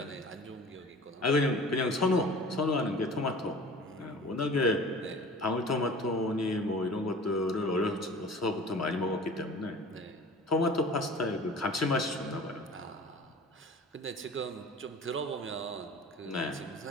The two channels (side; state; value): both; normal; correlation 0.42